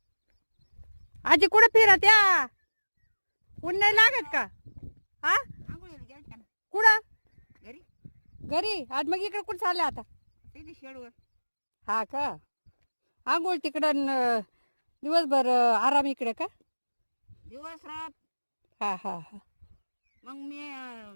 आजी कुठे फिरत या? ऊन नाही लागत का? हा कुठं? घरी घरी. आज मग इकडे कुठं चालले आता? ते शेडवर हा का? आंघोळ तिकडं दिवसभर आराम इकडे का? दिवस रात हा हा हा. मग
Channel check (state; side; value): inverted; both; correlation -1.00